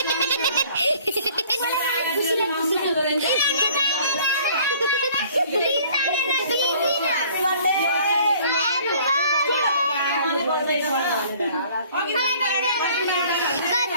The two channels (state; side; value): inverted; both; correlation -0.54